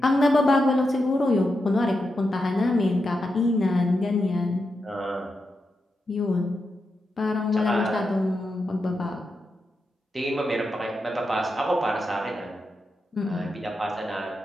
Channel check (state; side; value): normal; both; correlation 0.87